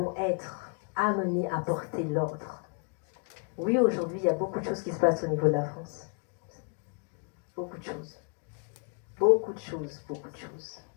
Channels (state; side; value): quieter; right; 39.0 dB